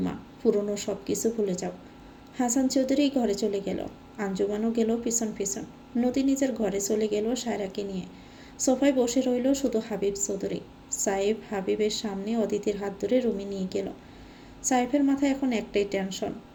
পুরনো সব কিছু ভুলে যাও। হাসান চৌধুরী ঘরে চলে গেল, আঞ্জুমানও গেল পিছন পিছন। নদী নিজের ঘরে চলে গেল সায়রাকে নিয়ে। সোফায় বসে রইল শুধু হাবিব চৌধুরী। সাইফ হাবিবের সামনে অদিতির হাত ধরে রুমে নিয়ে গেল। সাইফের মাথায় এখন একটাই টেনশন,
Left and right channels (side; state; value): both; identical; correlation 1.00